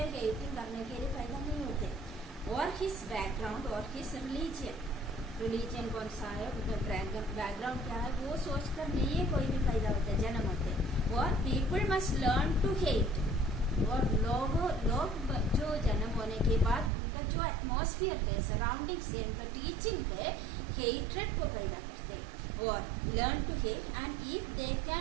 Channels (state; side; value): drops out; left; at 16.9 s